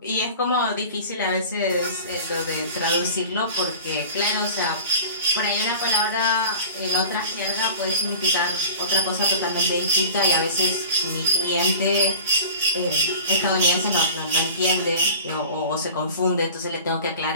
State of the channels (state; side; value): inverted; both; correlation -0.39